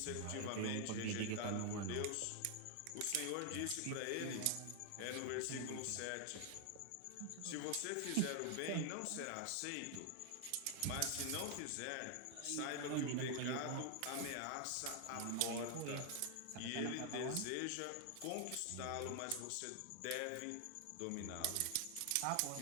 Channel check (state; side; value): different; both; correlation 0.00